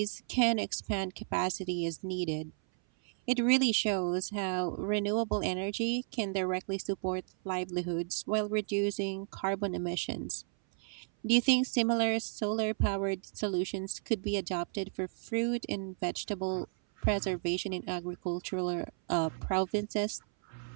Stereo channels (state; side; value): silent; left; 56 dB below the other